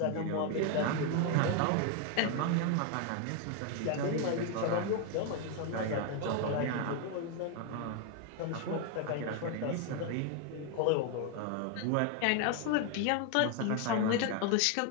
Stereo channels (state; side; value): different; both; correlation 0.01